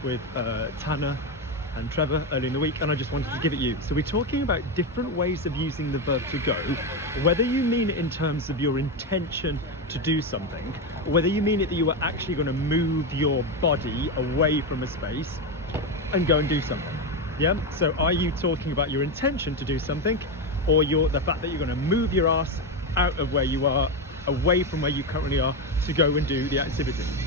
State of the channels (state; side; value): normal; both; correlation 0.12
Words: with Tanner and Trevor early in the week, and I just wanted to give it you. So we're talking about different ways of using the verb to go, whether you mean it in terms of your intention to do something, or whether you mean it that you are actually going to move your body away from a space and go and do something. Yeah, so are you talking about your intention to do something, or the fact that you're going to move your ass out of where you are, away from where you currently are, to go and do the activity?